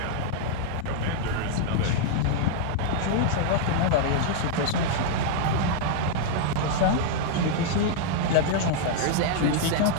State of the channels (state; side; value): different; both; correlation -0.01